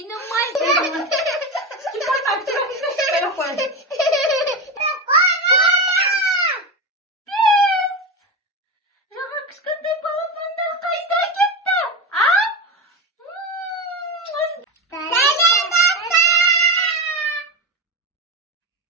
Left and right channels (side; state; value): both; normal; correlation 0.18